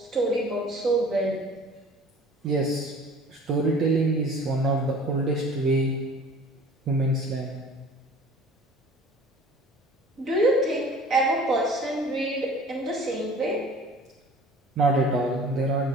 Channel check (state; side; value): normal; both; correlation 0.46